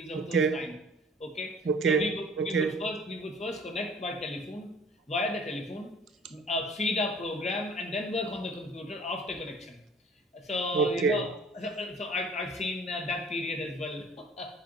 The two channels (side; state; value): both; normal; correlation 0.50